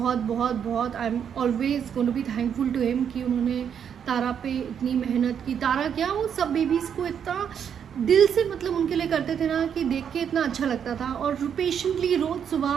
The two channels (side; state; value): left; quieter; 8.1 dB